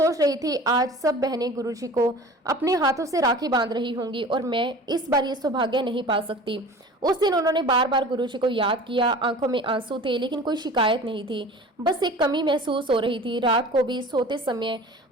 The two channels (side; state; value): both; normal; correlation 0.40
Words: रही थी आज सब बहनें गुरुजी को अपने हाथों से राखी बांध रही होंगी और मैं इस बार ये सौभाग्य नहीं पा सकती। उस दिन उन्होंने बार बार गुरुजी को याद किया। आंखों में आंसू थे, लेकिन कोई शिकायत नहीं थी। बस एक कमी महसूस हो रही थी। रात को भी सोते समय